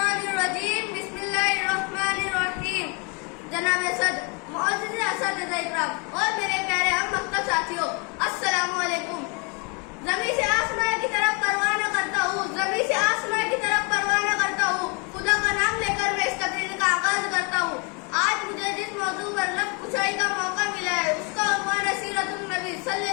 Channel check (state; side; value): quieter; right; 32.9 dB